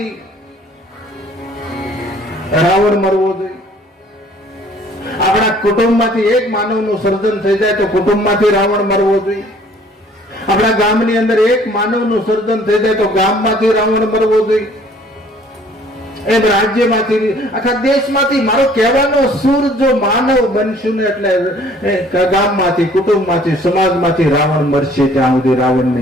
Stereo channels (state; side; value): normal; both; correlation 0.56